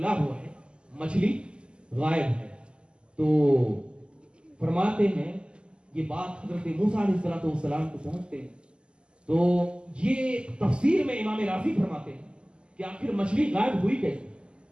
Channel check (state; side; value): late; left; 0.050 ms